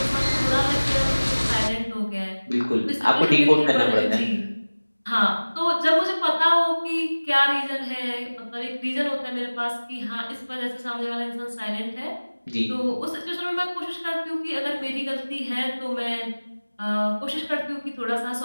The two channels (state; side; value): inverted; both; correlation -1.00